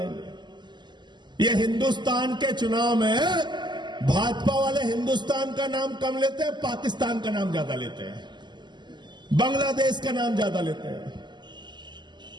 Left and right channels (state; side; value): late; left; 0.21 ms